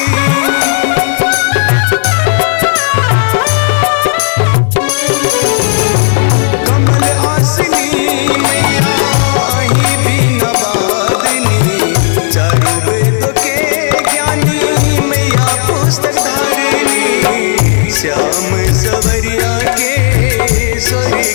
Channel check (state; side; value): silent; right; digital silence